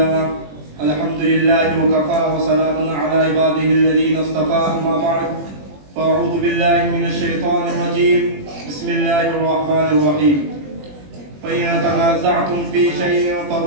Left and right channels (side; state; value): left; late; 21 ms